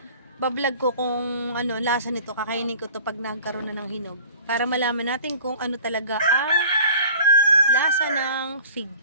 Bablog ko kung ano lasa nito, kakainin ko to pag nagkaroon na ng hinog para malaman natin kung ano talaga ang lasa ng fig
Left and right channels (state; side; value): inverted; both; correlation -0.46